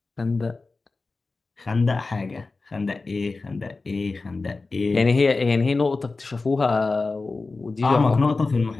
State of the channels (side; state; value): right; quieter; 3.7 dB